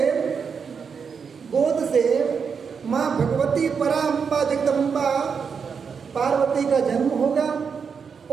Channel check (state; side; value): quieter; left; 6.1 dB